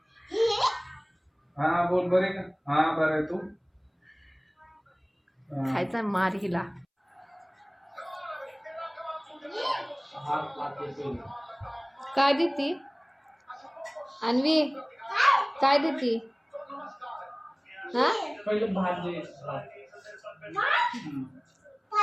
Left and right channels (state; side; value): identical; both; correlation 1.00